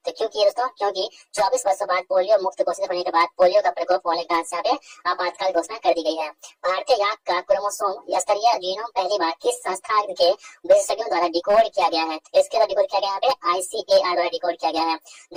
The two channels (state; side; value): identical; both; correlation 1.00